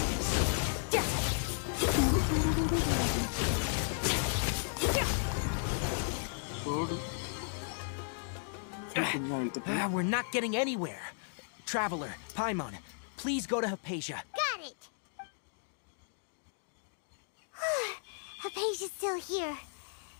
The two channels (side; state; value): right; silent; digital silence